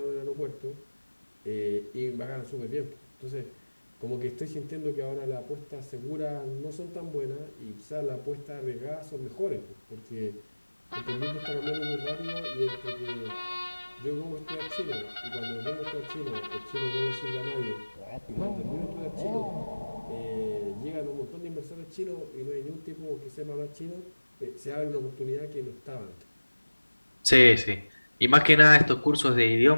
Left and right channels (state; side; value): inverted; both; correlation -1.00